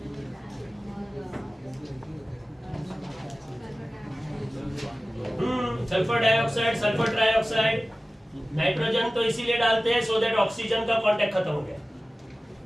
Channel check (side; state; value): both; normal; correlation 0.97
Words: sulphur dioxide, sulphur trioxide, nitrogen तो इसीलिए डालते हैं सो दैट ऑक्सीजन का कांटेक्ट खत्म हो गया,